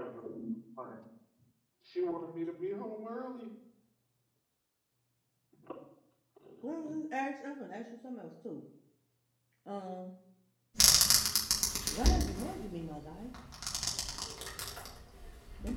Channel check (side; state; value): both; identical; correlation 1.00